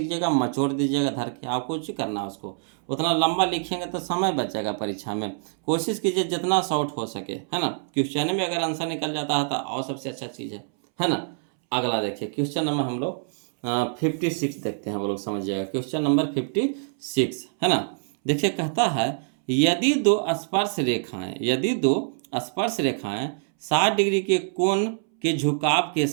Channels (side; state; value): left; silent; 62 dB below the other